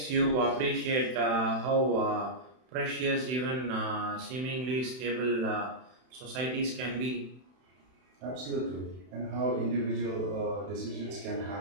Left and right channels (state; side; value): late; left; 31 ms